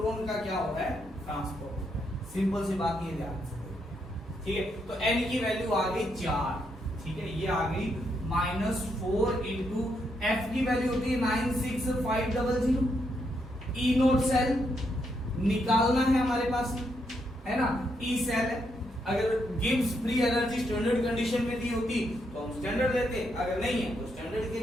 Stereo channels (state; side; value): normal; both; correlation 0.78